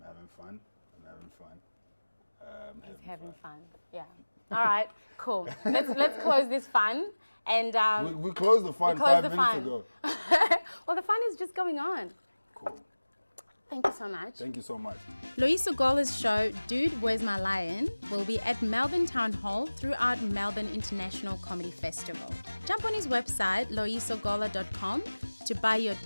having fun. having fun. He's having fun. Yeah. All right. Cool. Let's close this fun. And we closed the fun 5 minutes ago. Well, the fun is just going on. Cool. Thank you so much. Thank you so much. Loyiso Gola's show, Dude, Where's My Lion, will be at Melbourne Town Hall throughout Melbourne International Comedy Festival. Jump on his website, loyisogola.com, to buy your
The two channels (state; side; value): inverted; both; correlation -1.00